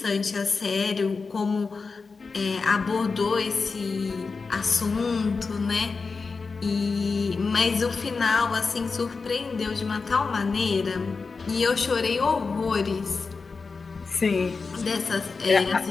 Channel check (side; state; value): right; quieter; 4.5 dB